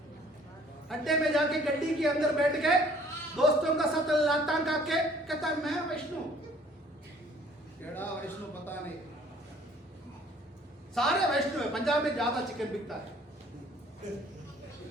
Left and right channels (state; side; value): normal; both; correlation 0.56